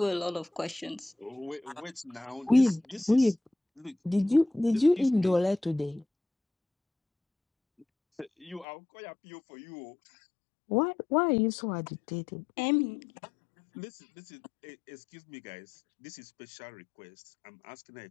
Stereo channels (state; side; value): drops out; right; at 8.7 s